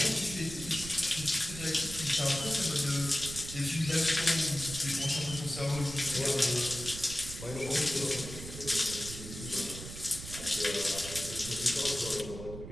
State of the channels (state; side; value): noise; right; rumble, 10 dB below the sound